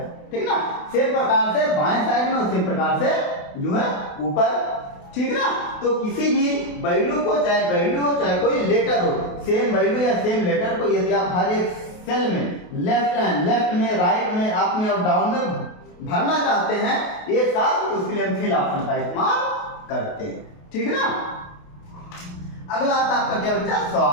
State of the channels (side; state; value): right; late; 28 ms